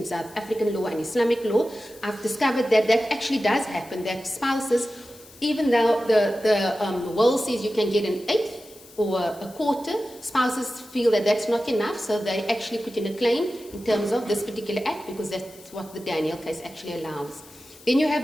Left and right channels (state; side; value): noise; left; hiss, 22 dB below the sound